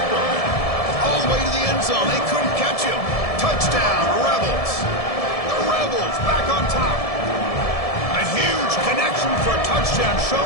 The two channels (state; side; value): late; right; 1.7 ms